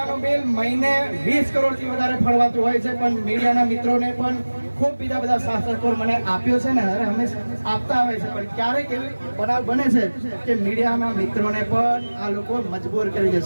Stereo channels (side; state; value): both; inverted; correlation -1.00